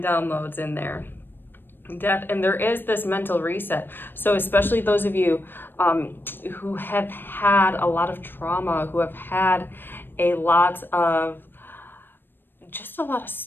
downloads in there. Death, and there is this mental reset. So especially those of you who have had a lot of trauma, who have had a lot of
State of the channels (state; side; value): late; right; 0.097 ms